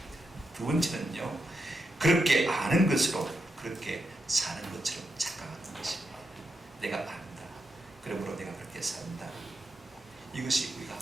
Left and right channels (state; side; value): normal; both; correlation 0.85